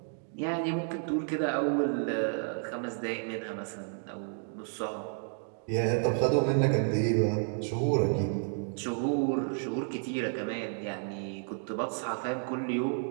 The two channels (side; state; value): left; silent; 57 dB below the other